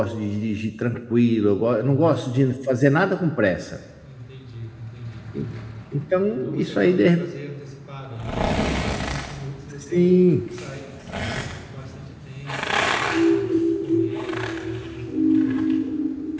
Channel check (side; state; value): both; identical; correlation 1.00